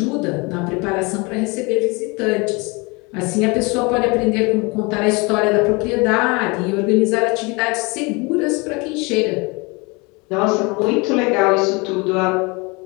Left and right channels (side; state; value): right; quieter; 27.6 dB